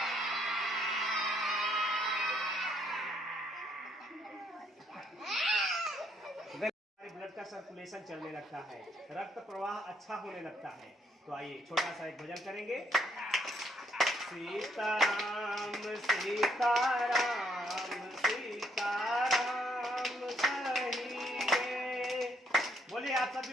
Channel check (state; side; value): normal; both; correlation 0.69